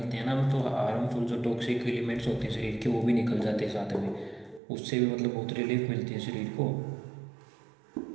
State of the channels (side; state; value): left; drops out; at 4.6 s